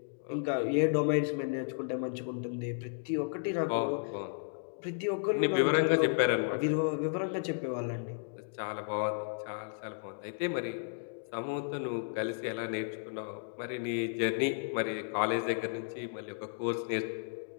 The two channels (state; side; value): silent; right; digital silence